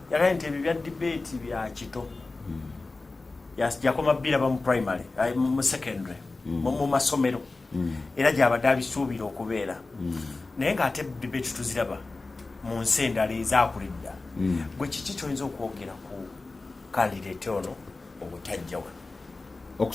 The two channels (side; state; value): right; quieter; 3.5 dB